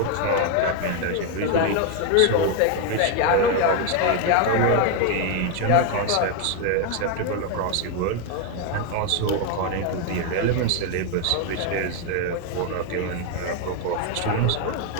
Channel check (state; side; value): different; both; correlation 0.01